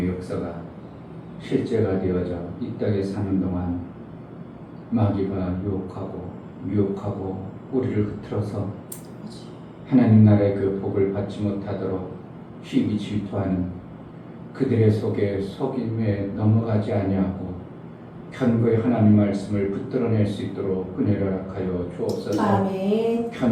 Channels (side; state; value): both; identical; correlation 1.00